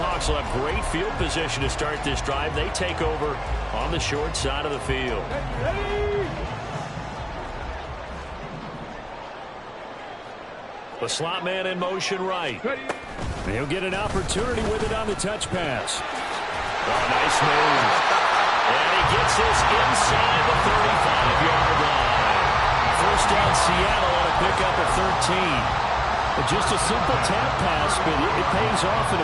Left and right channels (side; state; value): both; identical; correlation 1.00